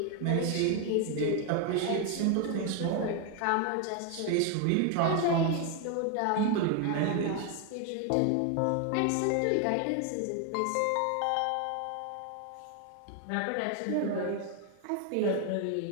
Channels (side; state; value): both; different; correlation 0.01